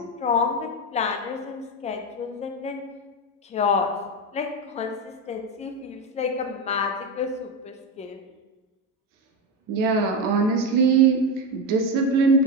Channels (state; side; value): normal; both; correlation 0.13